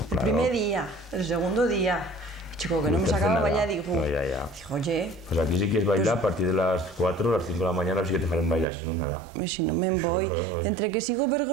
Claro. primer día, el segundo día. Chico, que no me te hace sacaba nada. bailar, digo, No, ya. digo, oye, Pues aquí si quieres bailar a partir de las 4 o las 5 de la mañana, sí que te farán bailar, si no, nada. si no me voy. Entre que sigo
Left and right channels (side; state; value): left; drops out; at 8.7 s